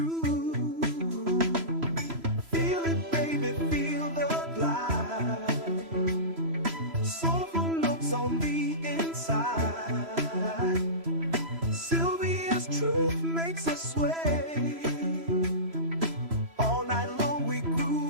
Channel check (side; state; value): left; late; 3.0 ms